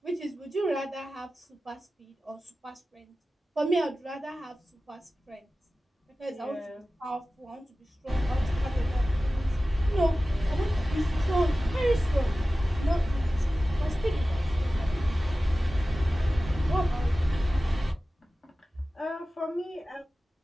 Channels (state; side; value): normal; both; correlation 0.96